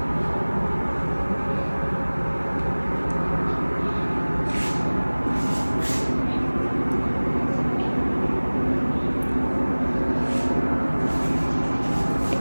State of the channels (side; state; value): both; inverted; correlation -1.00